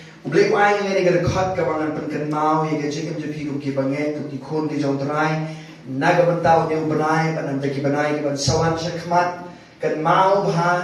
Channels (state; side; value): identical; both; correlation 1.00